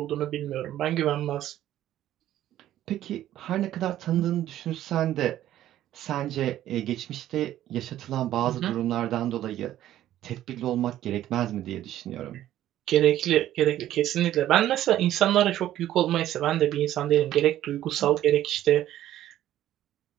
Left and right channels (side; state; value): left; quieter; 12.9 dB